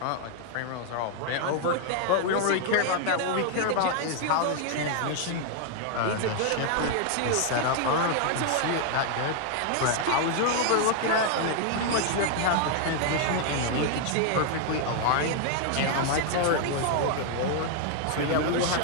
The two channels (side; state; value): both; different; correlation 0.00